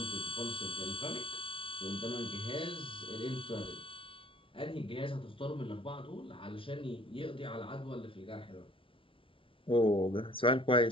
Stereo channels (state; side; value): late; right; 0.25 ms